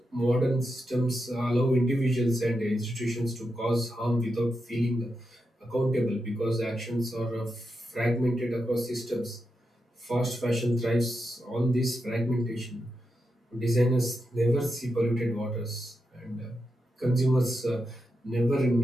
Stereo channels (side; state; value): both; normal; correlation 0.87